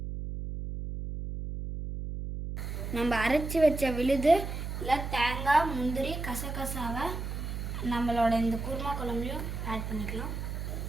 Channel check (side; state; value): right; noise; hum, 5 dB below the sound